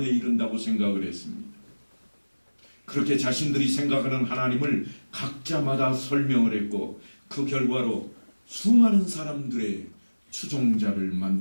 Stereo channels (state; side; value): inverted; both; correlation -1.00